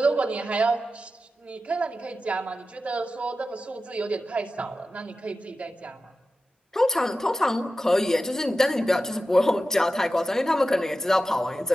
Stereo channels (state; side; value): normal; both; correlation 0.93